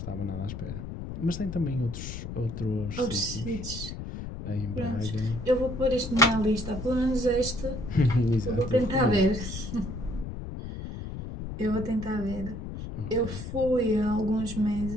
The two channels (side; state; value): left; noise; rumble, 8 dB below the sound